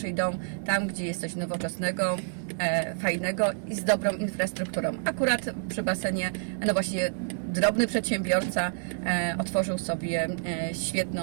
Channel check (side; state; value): left; silent; 59 dB below the other